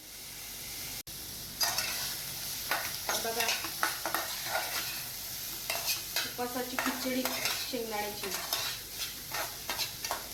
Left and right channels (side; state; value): both; identical; correlation 1.00